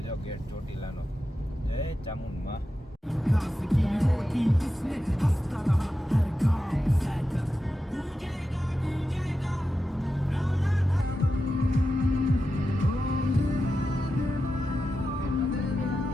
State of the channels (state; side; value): normal; both; correlation 0.90